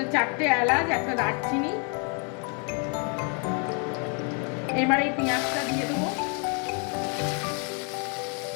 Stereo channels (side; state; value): right; quieter; 38.0 dB